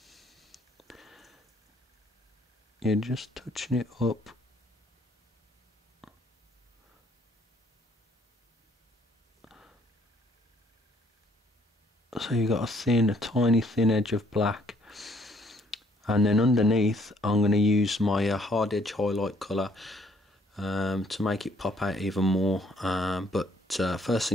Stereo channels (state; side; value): normal; both; correlation 0.64